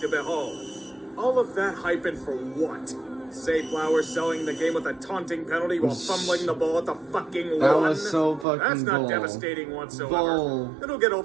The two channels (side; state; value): left; drops out; at 8.5 s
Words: to behold. All of that hype and for what? Zay Flowers selling the game with a taunting penalty while fumbling the ball at the fucking That one. was so fucking That's not bull. devastating whatsoever. Bull. It'll get